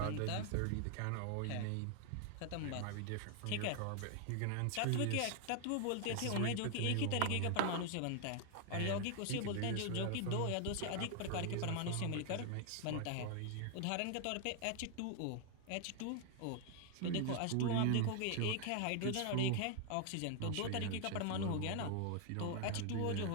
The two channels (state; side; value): different; both; correlation 0.00